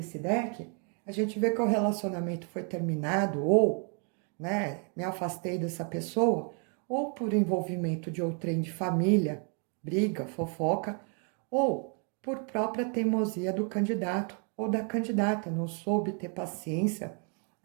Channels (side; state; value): left; quieter; 39.6 dB